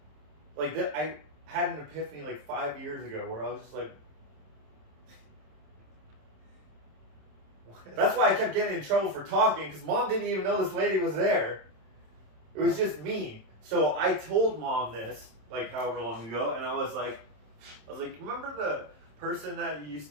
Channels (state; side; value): late; left; 27 ms